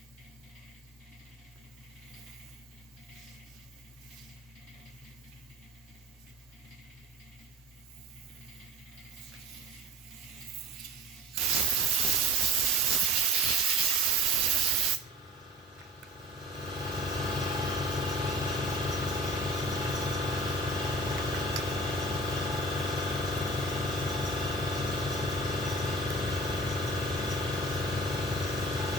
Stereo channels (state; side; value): normal; both; correlation 0.40